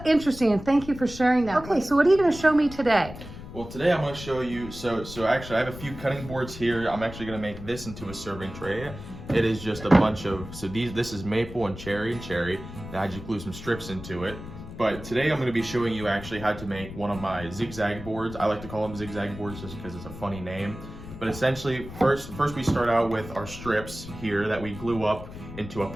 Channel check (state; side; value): noise; left; rumble, 12 dB below the sound